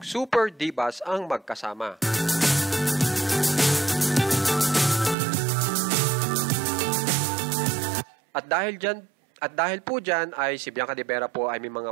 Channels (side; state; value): left; drops out; at 5.2 s